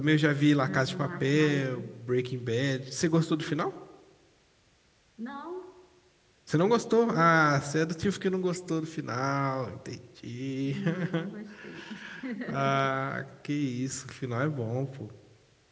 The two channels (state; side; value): identical; both; correlation 1.00